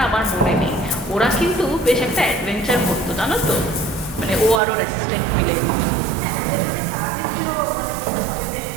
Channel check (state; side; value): drops out; left; at 4.6 s